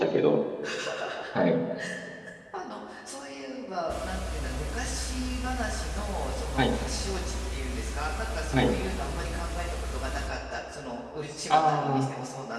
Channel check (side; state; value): both; identical; correlation 1.00